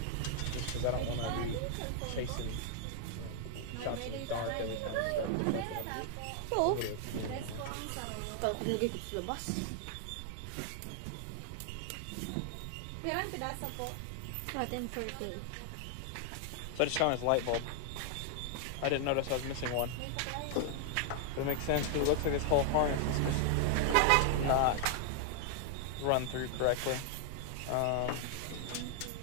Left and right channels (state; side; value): different; both; correlation 0.00